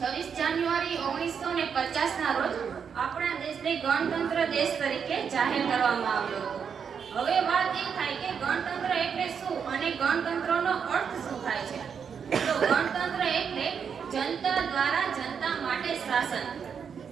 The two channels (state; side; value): quieter; left; 6.9 dB